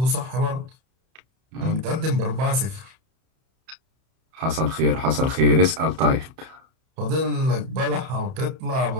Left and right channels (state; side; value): late; left; 31 ms